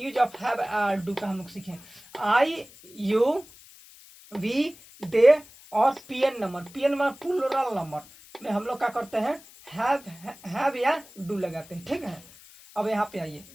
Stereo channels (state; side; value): noise; left; hiss, 22 dB below the sound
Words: ऑफ हैव डू का हम लोग सीखें। आई, यू, वी, दे और PN number, PN number plural number में हम लोग क्या करते हैं, हैव या डू लगाते हैं। ठीक है, अब यहाँ पे आइए,